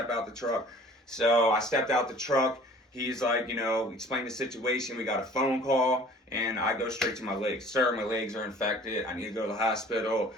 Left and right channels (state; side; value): normal; both; correlation 0.50